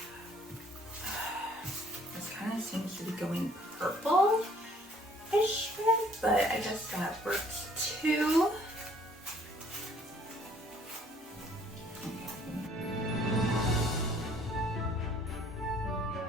This kind of seems to be going purple-ish red, but I guess that works too.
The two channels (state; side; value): normal; both; correlation 0.59